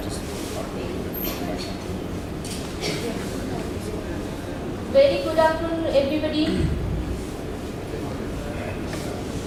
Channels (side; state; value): both; identical; correlation 1.00